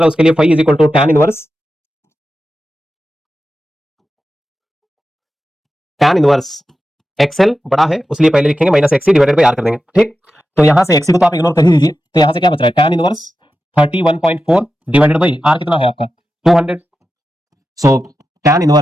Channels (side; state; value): both; normal; correlation 0.91